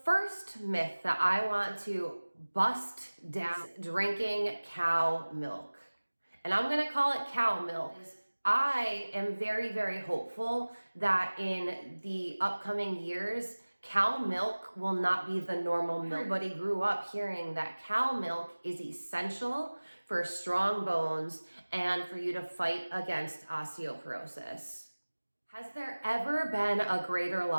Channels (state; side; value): inverted; both; correlation -1.00